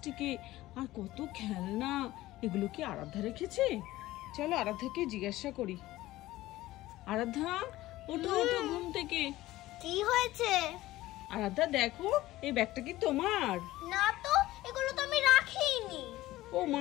আর কত খেলনা। এগুলো কি আরাধ্যা রেখেছে? চলো আরাধ্যাকে জিজ্ঞাসা করি। আরাধ্যা, ওঠো ওঠো ঘুম থেকে। কি হয়েছে? আরাধ্যা দেখো, এই ব্যাগটা কি তোমার? না তো, এগুলো তো আমি রাখিনি। ও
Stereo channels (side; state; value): right; quieter; 16.7 dB